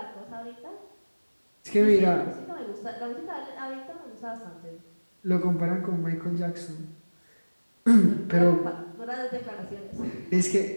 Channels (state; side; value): inverted; both; correlation -1.00